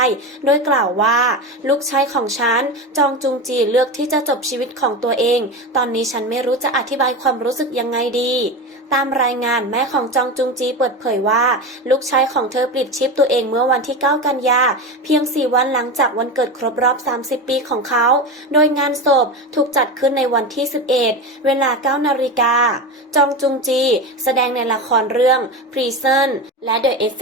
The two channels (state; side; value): normal; both; correlation 0.22